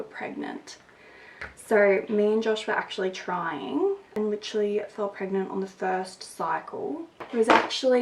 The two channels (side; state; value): both; identical; correlation 1.00